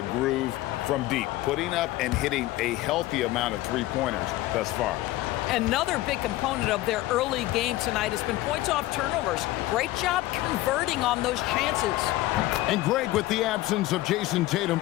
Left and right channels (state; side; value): quieter; right; 17.1 dB